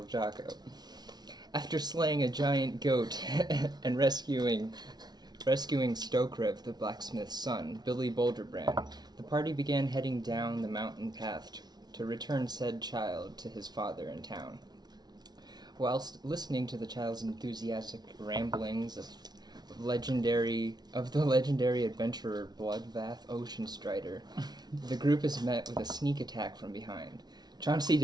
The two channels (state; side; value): late; left; 0.19 ms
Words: Jocko. After slaying a giant goat and rescuing Stokrev, the blacksmith's son, Billy Boulderbrand, the party began heading down the mountain path to return said child to his father in town. Whilst listening to the child's enthusiastic ramblings of the legendary adventurer Bloodbath Oceanstrider, the group is met with a sneak attack from behind. Chauncey